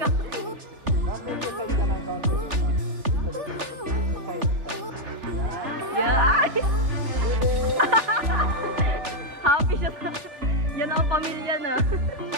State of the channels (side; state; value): left; late; 3.4 ms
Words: Yeah! Happy siya. Yan ang pamilya na.